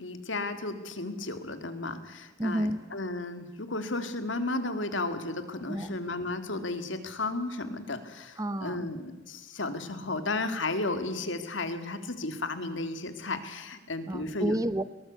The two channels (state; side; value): normal; both; correlation 0.29